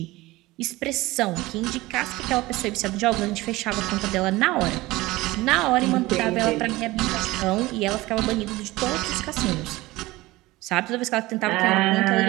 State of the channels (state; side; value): quieter; left; 19.5 dB